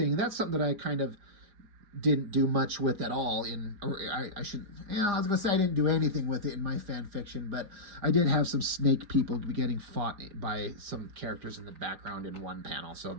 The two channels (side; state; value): left; late; 4.9 ms